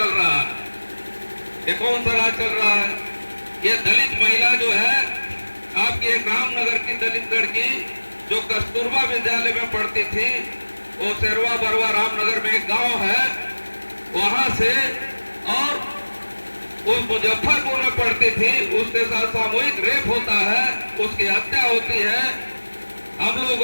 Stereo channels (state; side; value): inverted; both; correlation -1.00